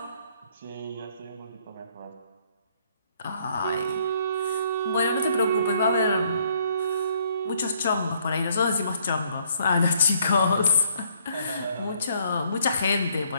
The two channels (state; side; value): inverted; both; correlation -0.66